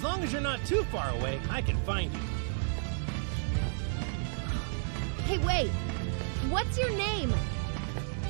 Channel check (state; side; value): silent; left; 56 dB below the other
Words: long as you're not too far away, I can find you. Hey, wait! What's your name?